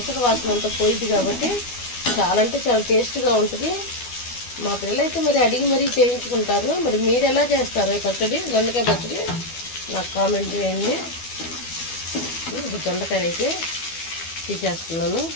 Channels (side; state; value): right; late; 12 ms